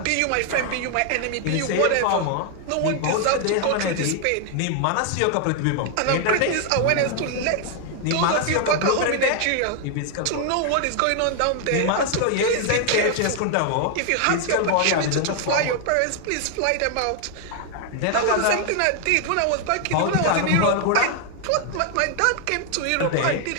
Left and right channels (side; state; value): both; different; correlation 0.00